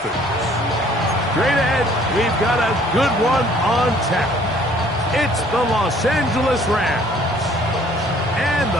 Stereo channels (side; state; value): both; normal; correlation 0.58